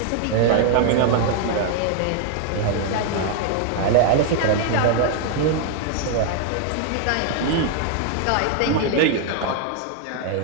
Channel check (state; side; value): different; both; correlation 0.00